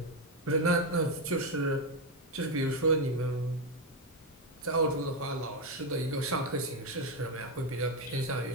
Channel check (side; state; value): both; normal; correlation 0.07